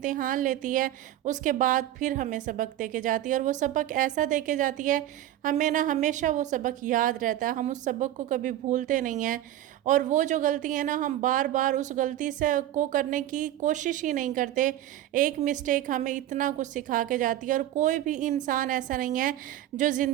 लेती है, उसके बाद फिर हमें सबक दे के जाती है। और वो सबक ऐसा दे के जाती है, हमें ना हमेशा वो सबक याद रहता है। हम उस सबक को कभी भूलते नहीं हैं। और वो जो गलती है ना, हम बार बार उस गलती से को करने की कोशिश ही नहीं करते। एक मिस्टेक हमें इतना कुछ सिखा के जाती है। और कोई भी इंसान ऐसा नहीं है जो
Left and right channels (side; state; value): left; quieter; 13.0 dB